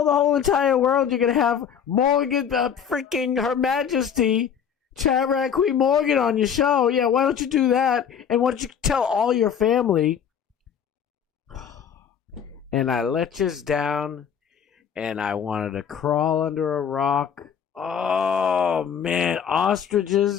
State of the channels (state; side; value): quieter; right; 7.9 dB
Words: the whole entire world you're going to have Morgan, freaking Her Majesty, Chat Rat Queen Morgan on your show. Yeah, why don't you do that? And why don't you tell all your family? And I let you down, and I wanted to crawl under a rock. Oh, man,